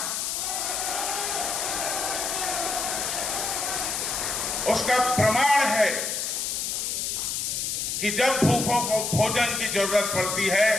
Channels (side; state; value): left; noise; hiss, 1 dB below the sound